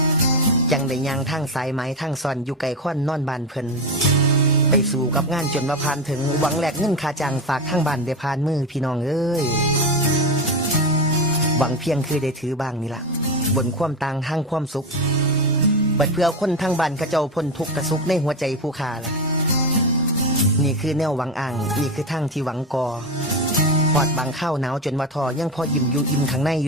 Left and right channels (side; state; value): both; normal; correlation 0.18